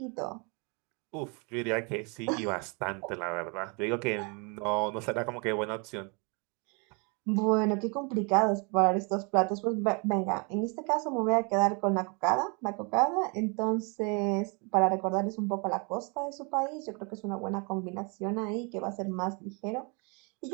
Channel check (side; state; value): left; quieter; 33.2 dB